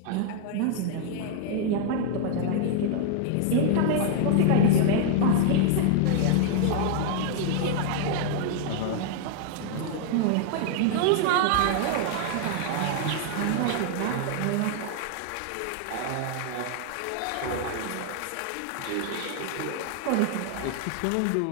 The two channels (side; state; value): both; different; correlation 0.00